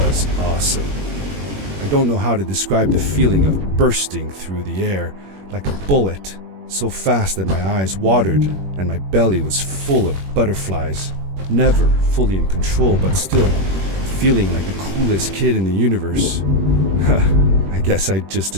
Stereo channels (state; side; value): late; left; 21 ms